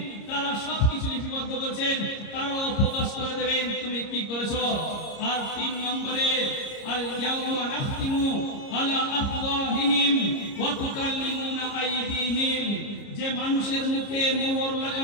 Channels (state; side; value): late; right; 30 ms